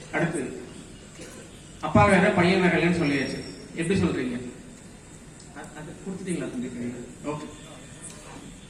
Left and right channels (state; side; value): identical; both; correlation 1.00